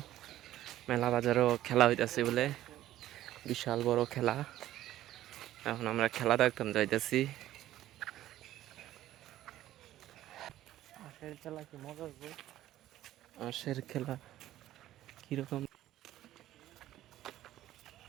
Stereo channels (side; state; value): left; quieter; 13.7 dB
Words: বাজারও খেলা হইতাছে বলে, বিশাল বড় খেলা। এখন আমরা খেলা দেখতাম যাইতেছি। খেলা কি মজা হবে? আশের খেলা কিরকম